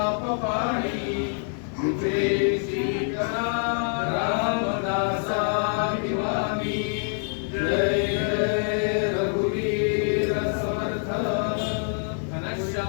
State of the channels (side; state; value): right; silent; 61 dB below the other